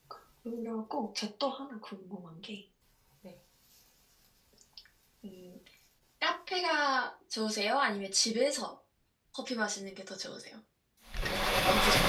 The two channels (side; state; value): both; identical; correlation 1.00